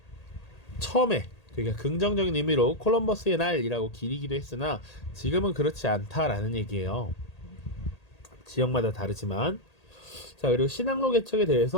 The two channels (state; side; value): late; right; 1.8 ms